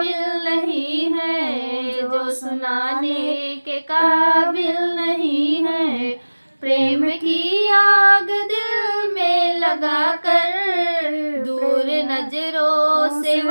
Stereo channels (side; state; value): both; inverted; correlation -1.00